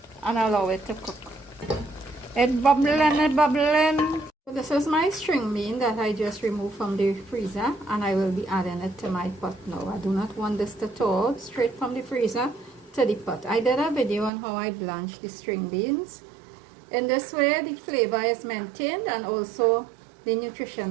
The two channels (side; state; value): left; drops out; at 14.3 s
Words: and allow it to cook. It's bubbling, it's bubbling. So this is my string bean that I just removed from the freezer, and I will be adding it to my pot now. I do not want this to thaw straight from the freezer to the pot. I did a video on how I blanch the string beans. In this way, the flavor is maintained and also the